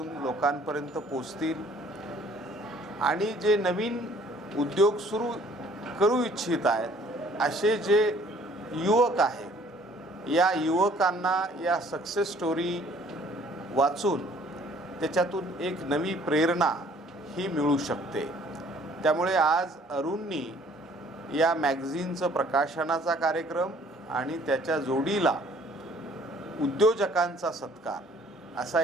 लोकांपर्यंत पोचतील आणि जे नवीन उद्योग सुरू करू इच्छित आहेत असे जे युवक आहेत या युवकांना या सक्सेस स्टोरी वाचून त्याच्यातून एक नवी प्रेरणा ही मिळू शकते। त्यामुळे आज अरुणनी या मॅगझिनचं प्रकाशनाचा कार्यक्रम आणि त्याच्या जोडीला उद्योजकांचा सत्कार असा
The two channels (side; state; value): both; normal; correlation 0.57